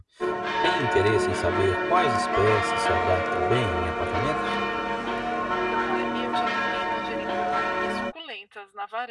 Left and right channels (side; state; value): both; identical; correlation 1.00